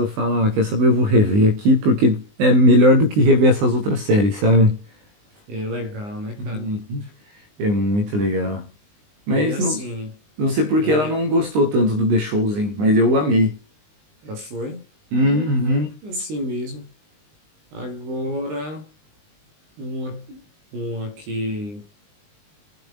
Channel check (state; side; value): late; left; 20 ms